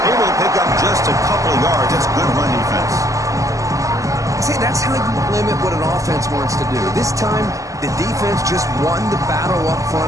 Able to pick up just a couple of yards. That's good run defense. See, that's how you limit what an offense wants to do. This time, the defense just won the battle up front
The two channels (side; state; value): left; late; 0.16 ms